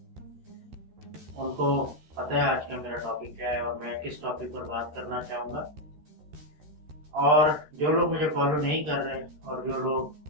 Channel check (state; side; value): late; left; 13 ms